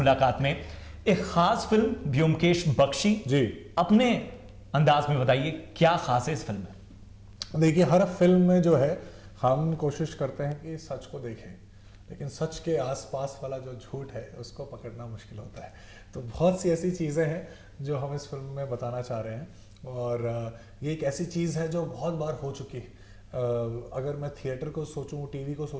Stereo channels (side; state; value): both; identical; correlation 1.00